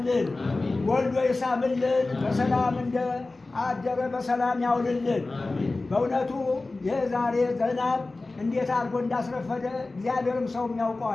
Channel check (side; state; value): right; quieter; 3.3 dB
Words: ወልዶ ይሳምልን፣ በሰላም እንደ አደረ በሰላም ያውልልን። በእውነቱ የዛሬ ዝናብ እንዴት አድርጎ እንዳስረፈደ እግዚአብሔርም ሰውም